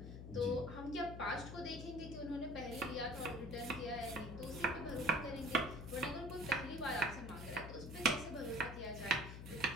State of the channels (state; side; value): noise; left; hum, 9 dB below the sound